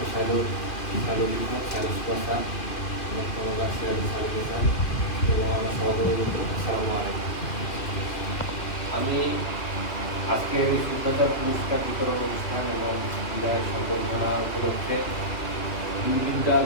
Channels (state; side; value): late; right; 2.4 ms